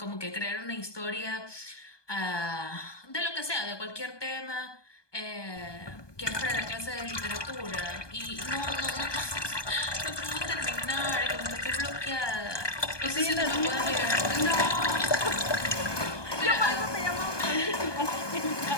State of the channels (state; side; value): late; right; 1.2 ms